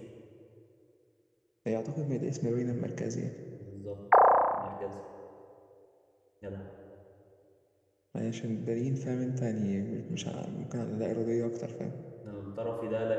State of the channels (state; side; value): identical; both; correlation 1.00